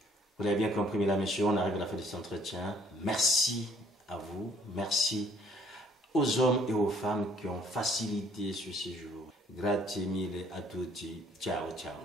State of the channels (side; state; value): both; normal; correlation 0.61